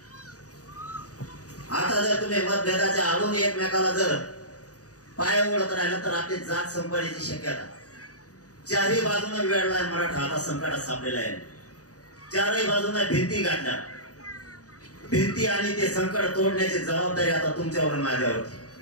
आता जर तुम्ही मतभेदाच्या आडून एकमेकाला जर पाय ओढत राहिला तर आपली जात संपण्याची शक्यता. चारही बाजूने वेळलाय मराठा आता संकटात सापलेला आहे. चारही बाजूने भिंती गाठल्या. भिंती आणि ते संकट तोडण्याची जबाबदारी आता तुमच्यावर माझ्यावरती.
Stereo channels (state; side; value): late; right; 0.67 ms